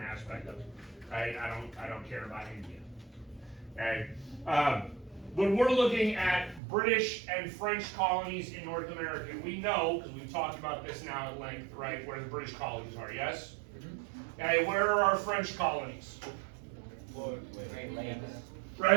aspect of it, right? I don't care about India, okay? When we're looking at British and French colonies in North America, we know, because we've talked about this now at length, right, where the British colonies are, yes? Okay, where are our French colonies?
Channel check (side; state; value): left; drops out; at 6.6 s